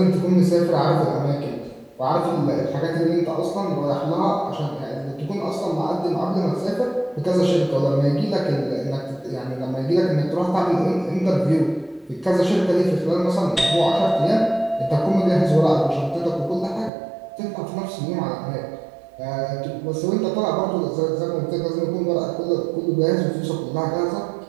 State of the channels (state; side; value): drops out; left; at 16.9 s